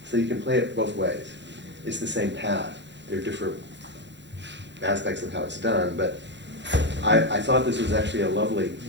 So you can play it both ways. It's the same path. There are different aspects of how it's done, but I thought this was actually a lovely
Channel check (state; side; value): late; left; 0.52 ms